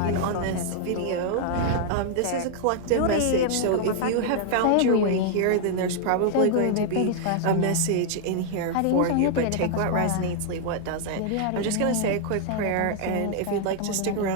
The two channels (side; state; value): both; different; correlation -0.01